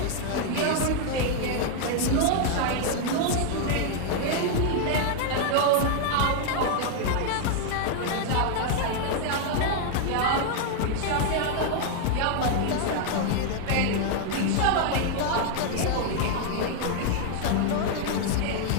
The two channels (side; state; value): both; different; correlation 0.00